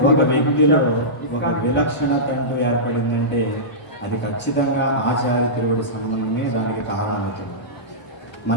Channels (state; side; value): late; right; 1.5 ms